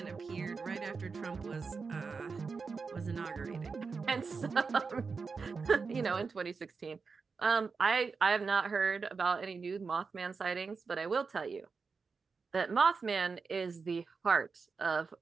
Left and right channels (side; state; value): left; quieter; 4.9 dB